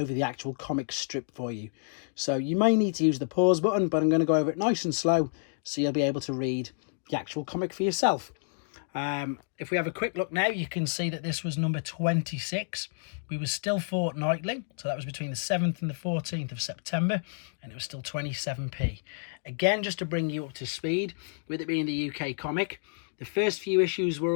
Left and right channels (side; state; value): right; silent; digital silence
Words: the actual comic strip for you. So you may need to use the pause button, but I'm going to go over it nice and slow so you'll be able to read the actual comic for yourself. If we have a quick look now, you can see that this was number 26. We were still fortnightly, so that was between the 7th and the 14th of September, and it was still 27p. Again, just to bring you up to speed, with it being the UK comic, the first few issues were